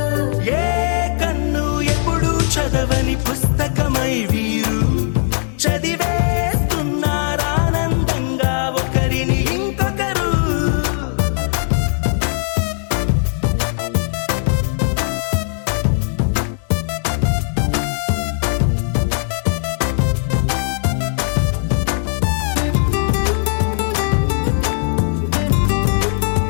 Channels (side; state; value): right; silent; digital silence